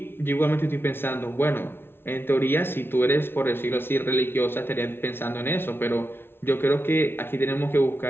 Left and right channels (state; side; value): late; right; 0.11 ms